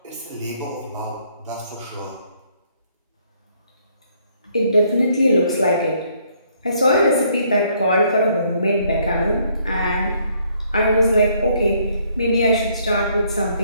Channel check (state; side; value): inverted; both; correlation -0.67